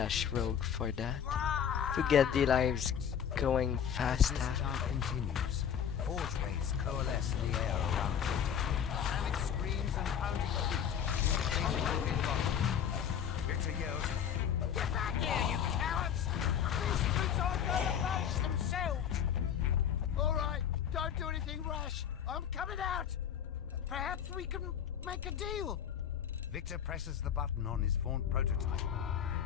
Rogue for that, to get the lives going faster. This chant continues. Forge rays coalesce in the air around Victor. Panic screams and pounding feet. Victor yells, "Get back here, you cowards! These boots aren't going to manage themselves!" All right, don't do anything rash. I'm coming out. Perhaps we can make a deal. Victor presses the button on his faunt prototype.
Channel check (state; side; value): quieter; right; 8.5 dB